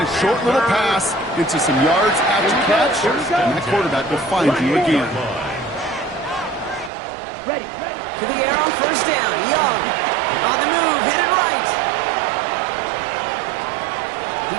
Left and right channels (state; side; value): drops out; left; at 6.9 s